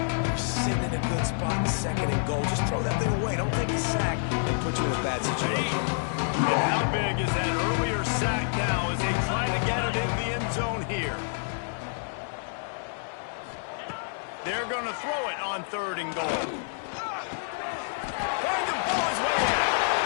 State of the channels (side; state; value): right; silent; digital silence